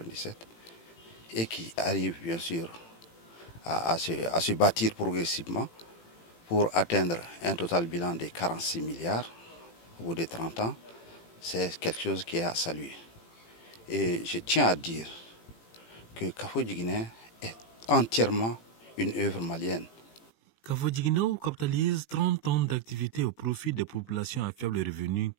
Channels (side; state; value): right; late; 18 ms